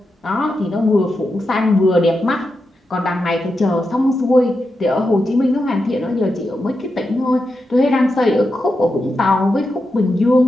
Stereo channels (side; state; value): both; normal; correlation 0.88